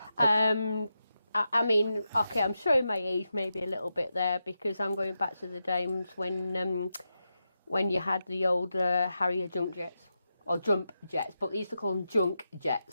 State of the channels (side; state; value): both; inverted; correlation -0.88